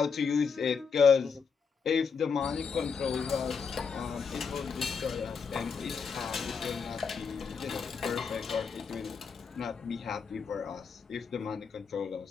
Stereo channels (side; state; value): right; quieter; 5.8 dB